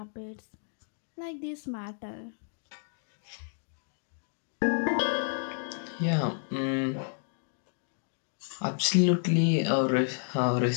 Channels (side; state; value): right; silent; digital silence